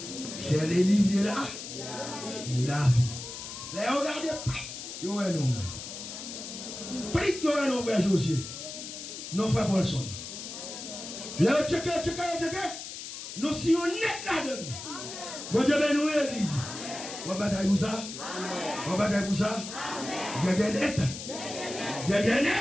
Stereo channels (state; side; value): noise; left; hiss, 9 dB below the sound